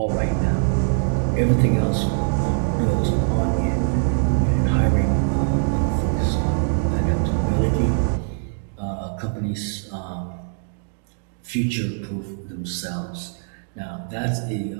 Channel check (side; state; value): left; silent; digital silence